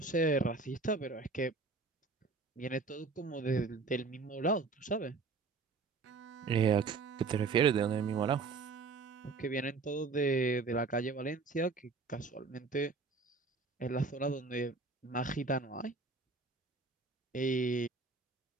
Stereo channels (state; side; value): quieter; left; 4.2 dB